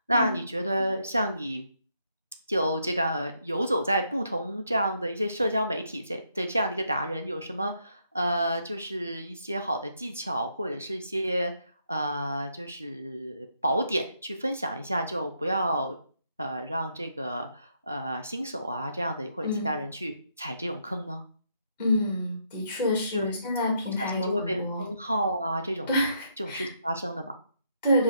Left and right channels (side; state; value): both; inverted; correlation -0.75